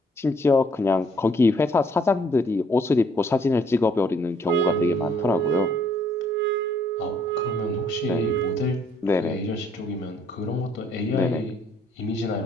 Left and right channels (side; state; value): both; normal; correlation 0.65